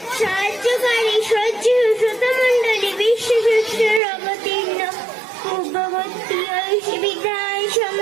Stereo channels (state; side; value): drops out; left; at 4.0 s